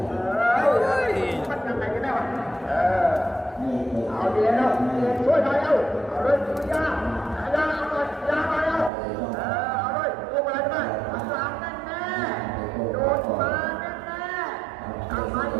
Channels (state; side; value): drops out; left; at 8.9 s